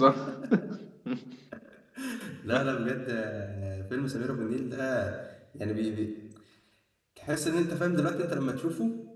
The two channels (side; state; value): both; identical; correlation 1.00